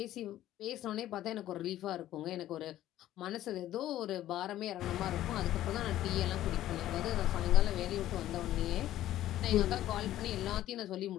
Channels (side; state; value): right; quieter; 13.5 dB